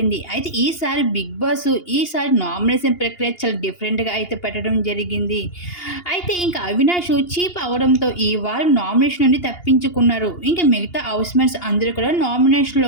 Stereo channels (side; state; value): right; late; 2.8 ms